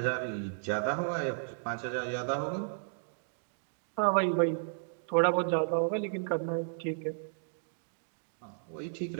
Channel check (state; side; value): silent; left; digital silence